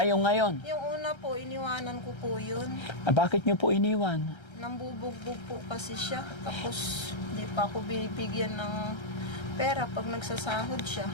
yung ngayon. Yung una po, iniwanan ko po yun. Ah, bakit nyo po iniwan? Nambubugbog po kasi siya. Tapos, di pa ako binibigyan ng pera pag nagsasahod siya.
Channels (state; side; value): late; right; 1.3 ms